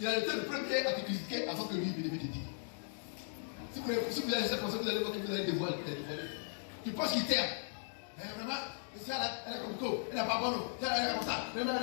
il a été le premier à te critiquer avant que lui il te dise. Si vous allez laisser penser, vous allez voir que vous allez dévoiler. Tu penses qu'il t'aime. Mais vraiment, elle est comme toi, elle n'est pas bonne, elle est comme ça.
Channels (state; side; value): silent; right; digital silence